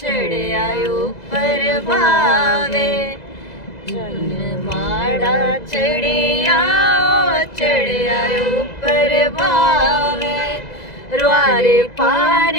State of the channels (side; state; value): right; late; 2.0 ms